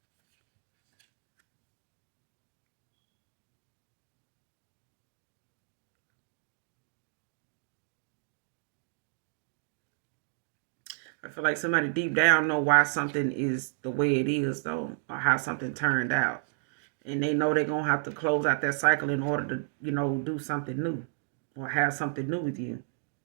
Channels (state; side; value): silent; left; digital silence